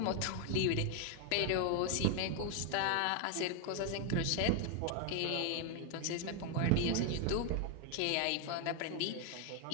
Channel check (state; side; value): different; both; correlation 0.01